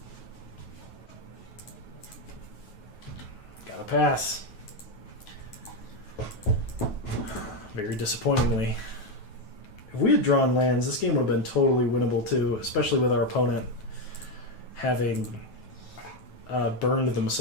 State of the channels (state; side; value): late; right; 9.2 ms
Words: Gotta pass. Very disappointingly. If we had drawn lands, this game would have been totally winnable too, especially with our opponent having burned